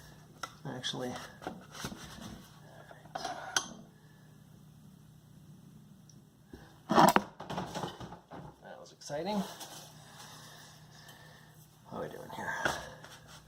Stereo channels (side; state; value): both; identical; correlation 1.00